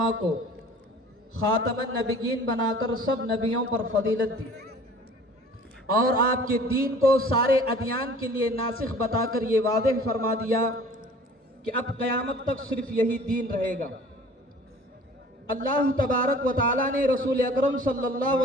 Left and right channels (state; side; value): normal; both; correlation 0.48